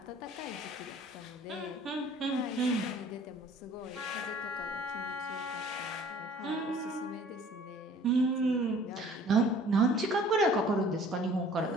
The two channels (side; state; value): both; normal; correlation 0.52